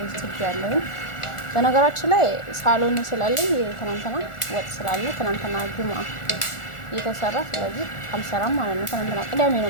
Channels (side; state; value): right; late; 1.4 ms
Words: ሩዝ ትግ ያለው በነገራችን ላይ ሳሎን ስላለኝ ትናንትና ወጥ ስላለ ትናንትና ጁማ እየተሰራ ስለዚህ አልሰራም ማለት ነው። ትናንትና ቅዳሜ